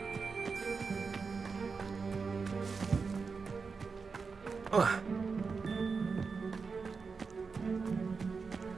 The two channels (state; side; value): quieter; left; 4.9 dB